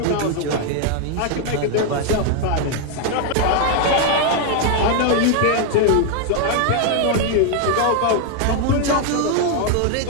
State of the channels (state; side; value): different; both; correlation 0.00